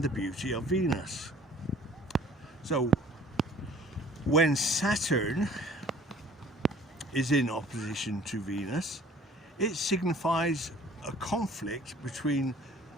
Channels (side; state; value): both; normal; correlation 0.53